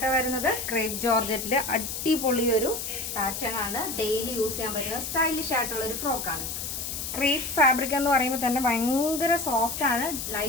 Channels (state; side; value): noise; left; hiss, 5 dB below the sound